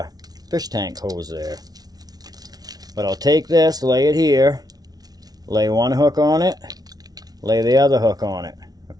fish tank hose there. But I'll take this, lay it here, lay one hook on it, lay the other hook on it.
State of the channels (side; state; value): left; late; 0.19 ms